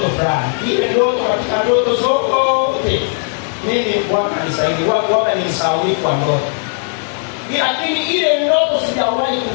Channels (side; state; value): right; silent; 68 dB below the other